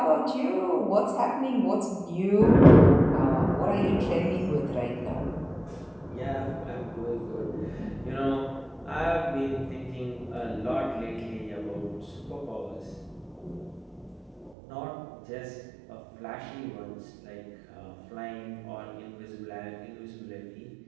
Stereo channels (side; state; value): left; drops out; at 14.6 s